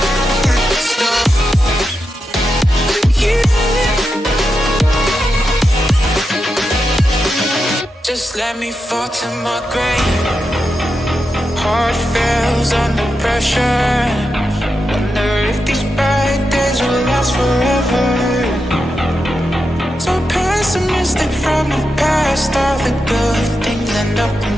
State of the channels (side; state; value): both; normal; correlation 0.87